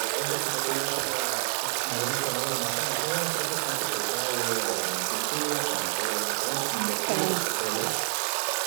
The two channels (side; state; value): left; silent; 59 dB below the other